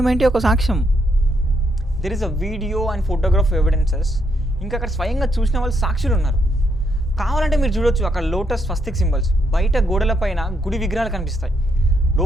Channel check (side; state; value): both; normal; correlation 0.76